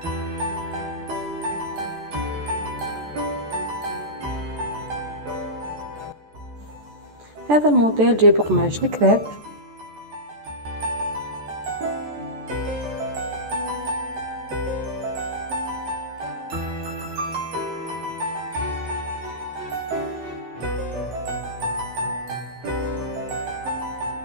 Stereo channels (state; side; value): late; left; 14 ms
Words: هذا الموديل جايب قماش الكريب.